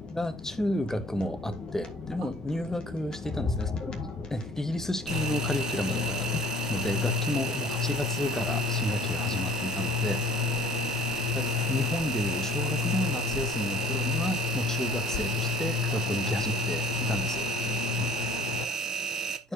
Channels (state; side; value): normal; both; correlation 0.52